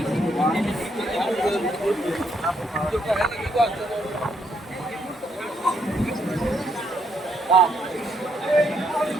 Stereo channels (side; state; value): both; normal; correlation 0.74